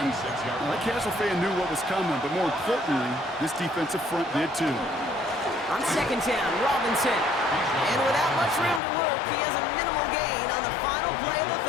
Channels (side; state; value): right; drops out; at 8.8 s